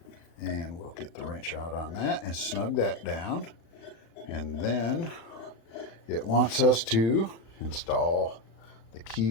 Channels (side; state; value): right; late; 36 ms